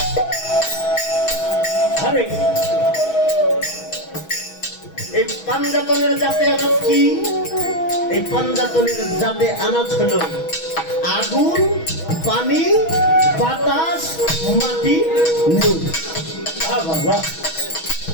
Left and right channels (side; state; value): right; late; 6.2 ms